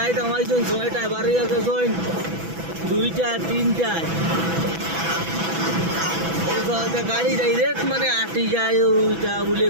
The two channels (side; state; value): left; late; 6.0 ms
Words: থামাইছেন ছয়টা, বাড়ি আছে ছয় দুইটা তিনটায় গাড়ি ডাইরেক্ট মানে আটি যায় ওইটা বলে